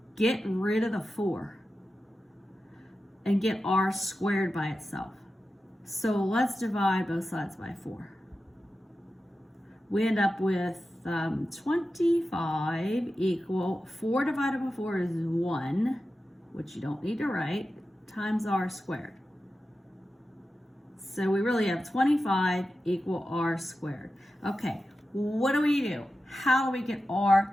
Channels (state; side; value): normal; both; correlation 0.92